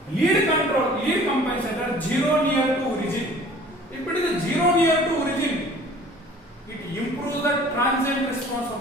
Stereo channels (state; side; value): normal; both; correlation 0.49